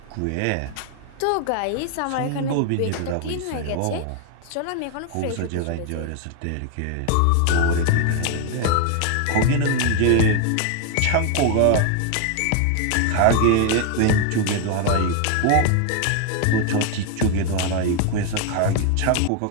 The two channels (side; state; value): both; different; correlation 0.01